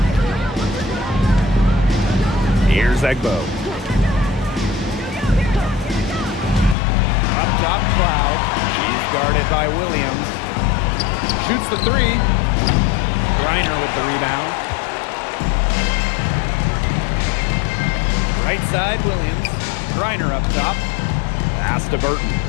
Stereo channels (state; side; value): drops out; right; at 6.8 s